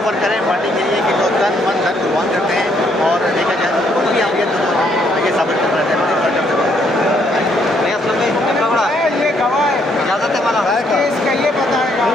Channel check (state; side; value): normal; both; correlation 0.70